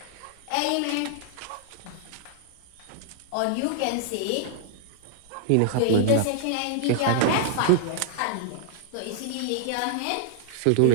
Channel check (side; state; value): both; different; correlation -0.01